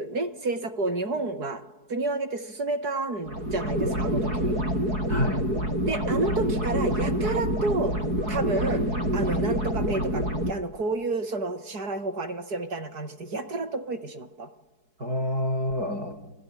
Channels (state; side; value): late; left; 4.7 ms